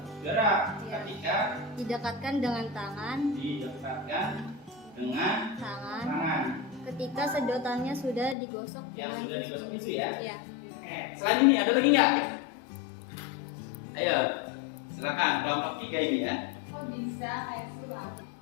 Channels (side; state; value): right; drops out; at 8.3 s